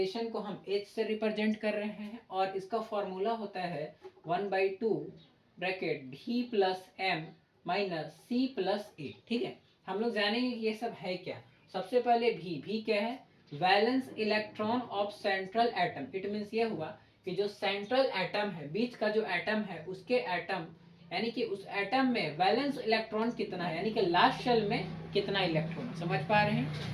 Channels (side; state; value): both; identical; correlation 1.00